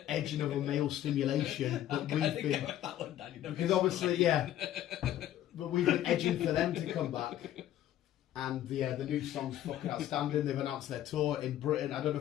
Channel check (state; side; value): quieter; right; 12.4 dB